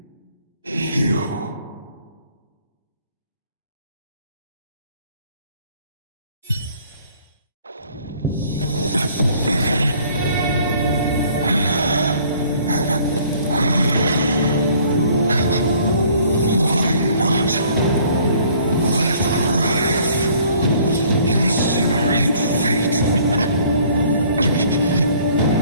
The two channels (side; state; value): both; inverted; correlation -0.57